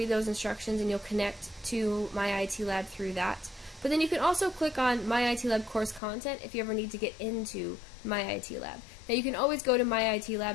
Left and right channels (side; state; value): right; drops out; at 6.0 s